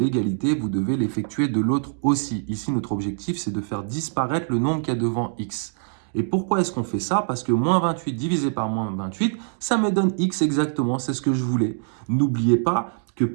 vous devez l'effectuer de l'autre aussi. Ici, notre objectif, c'est de faire disparaître le nombre qu'il y a devant x. Et pourquoi est-ce qu'on fait ça? Parce que moins 28 divisé par moins 28, ça me donne x exactement, c'est ce que je voulais. N'oubliez pas que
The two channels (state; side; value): silent; left; digital silence